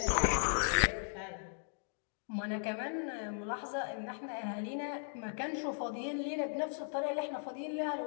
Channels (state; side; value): silent; right; digital silence